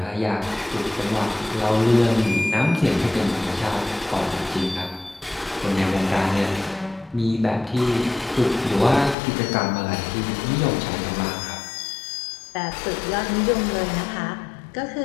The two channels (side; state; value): right; drops out; at 9.2 s